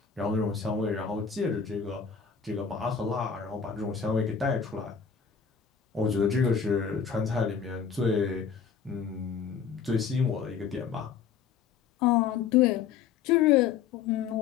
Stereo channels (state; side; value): quieter; right; 6.8 dB